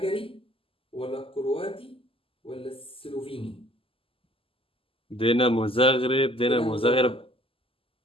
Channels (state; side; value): late; right; 0.26 ms